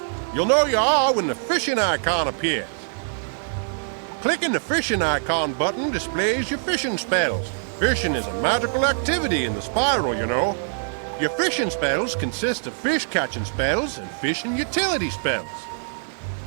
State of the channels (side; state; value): left; silent; digital silence